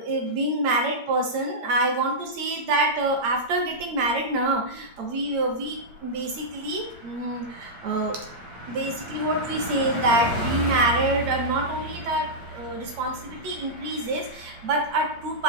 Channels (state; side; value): late; left; 8.7 ms